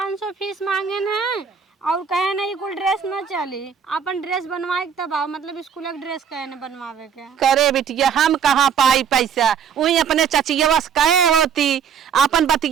फीस मांगे न और कहे ना ये कुल ड्रेस ना चली, अपन ड्रेस बनवाए तब आओ, मतलब स्कूल का ड्रेस कहे ना बनवावे के। करे बिटिया हम कहाँ पाई पैसा, वही अपने चचिया कहे होती, अपन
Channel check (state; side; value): quieter; left; 7.4 dB